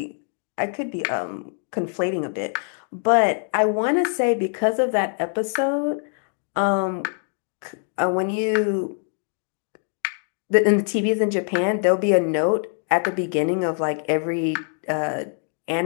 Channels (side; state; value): right; silent; 57 dB below the other